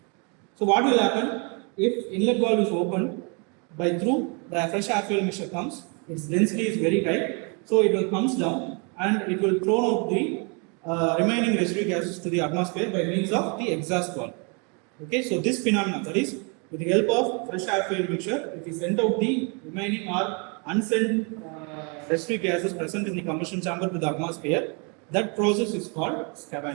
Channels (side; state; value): left; quieter; 34.6 dB